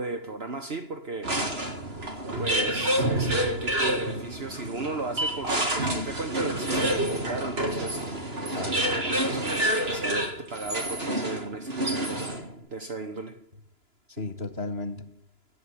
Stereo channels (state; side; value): late; left; 2.9 ms